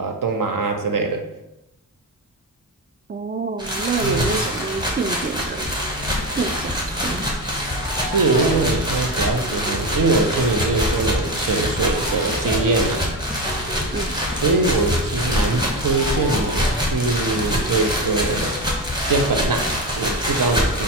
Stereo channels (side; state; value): both; normal; correlation 0.17